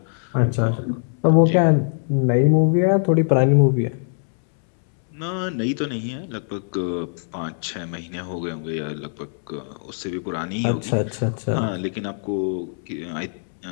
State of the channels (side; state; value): right; silent; 64 dB below the other